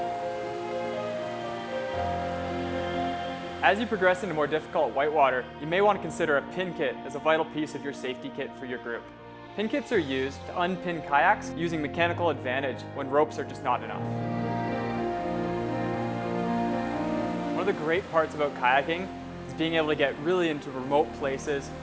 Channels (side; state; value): both; identical; correlation 1.00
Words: As you progress into more difficult whitewater, you may want to consider a pin kit as a vital piece of your safety kit for your group. Pin kits are used to unpin kayaks using mechanical advantage when ropes are just not enough. One of the great parts about kayaking is being able to get really into remote places